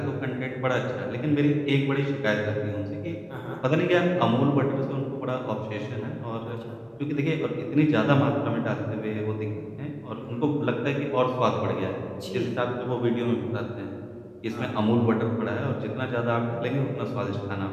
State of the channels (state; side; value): identical; both; correlation 1.00